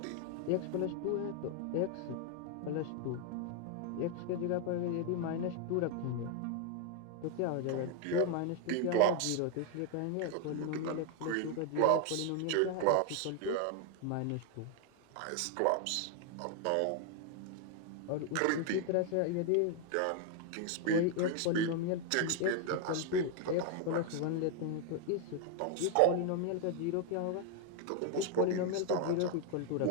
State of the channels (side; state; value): both; different; correlation 0.00